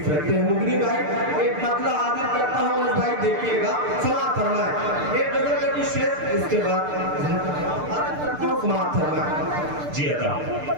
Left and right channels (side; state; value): left; late; 6.7 ms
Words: रखते हैं। मुगनी भाई एक मतला हाजिर करता हूँ, उस भाई देखिएगा, समाप्त फरमाए। एक गजल का कुछ शेर, इसके बाद हाजिर करता हूँ, समाप्त फरमाए। जी अदा